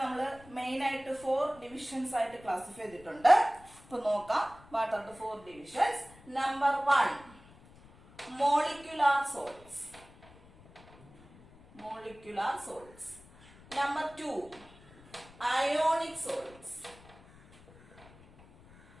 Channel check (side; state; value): left; noise; rumble, 23 dB below the sound